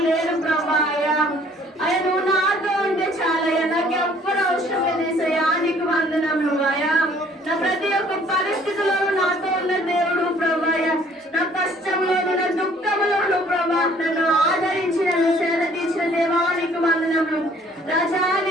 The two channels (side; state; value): both; normal; correlation 0.58